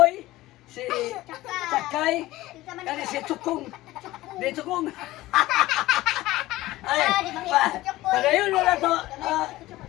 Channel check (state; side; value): quieter; right; 17.4 dB